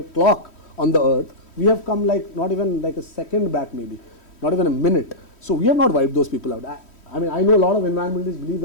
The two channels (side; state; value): right; late; 3.1 ms